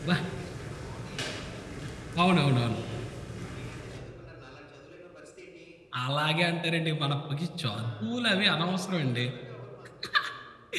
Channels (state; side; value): identical; both; correlation 1.00